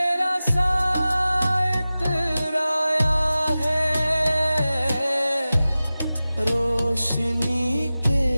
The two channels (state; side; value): inverted; both; correlation -0.96